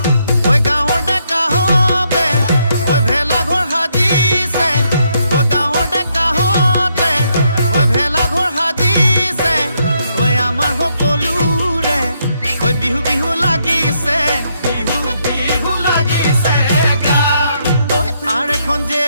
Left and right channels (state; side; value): inverted; both; correlation -0.76